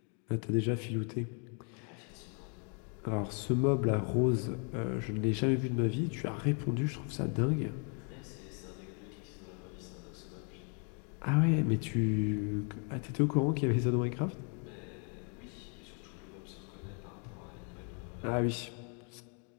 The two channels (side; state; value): right; quieter; 39.5 dB